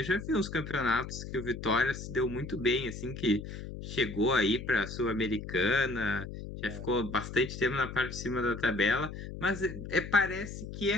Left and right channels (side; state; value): left; noise; hum, 9 dB below the sound